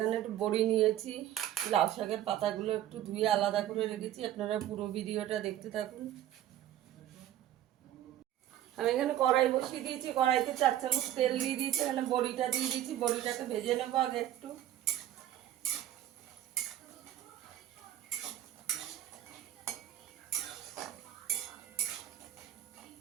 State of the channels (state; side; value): quieter; left; 12.4 dB